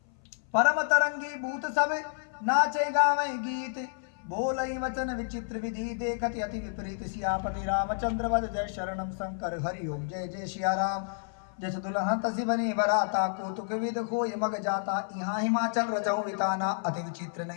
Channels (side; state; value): right; silent; 56 dB below the other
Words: परम तरंगी भूत सब नाचे गावे गीत। बोलई वचन विचित्र विधि देखत अति विपरीत। सियापति रामचंद्र वद जय शरणम शंकर हरि ओम। जय जय सिया राम। जस दुल्हन तसी बनी बराता। कौतुक विद होय मग जाता। यहाँ हिमाचल रजऊ विताना अति विचित्र